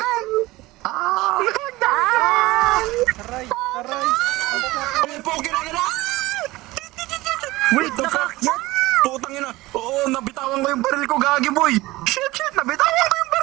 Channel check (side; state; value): left; quieter; 19.4 dB